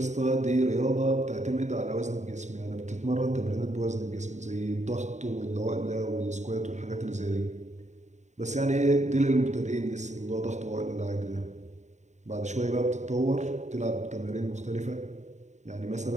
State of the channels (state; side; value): late; left; 0.34 ms